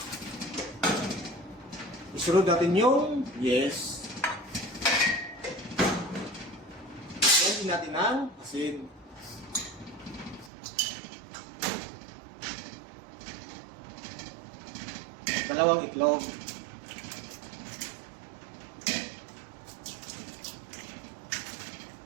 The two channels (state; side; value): drops out; left; at 10.5 s